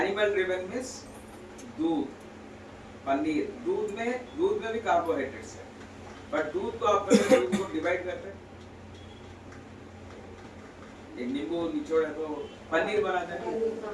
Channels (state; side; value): identical; both; correlation 1.00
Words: driven means दूध, पनीर, दूध में भी कार्बोहाइड्रेट्स है, बट दूध को आप दूध को डिवाइड करते हैं, एक नींबू निचोड़ है तो पनीर बनाते हैं,